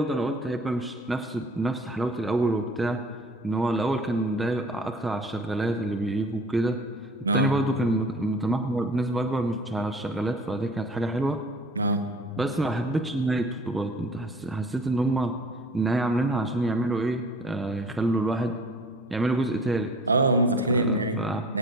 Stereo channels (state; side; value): normal; both; correlation 0.46